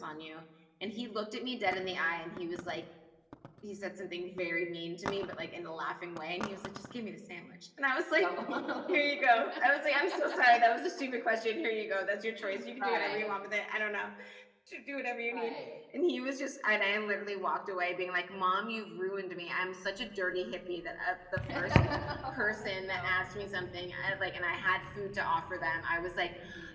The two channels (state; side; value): identical; both; correlation 1.00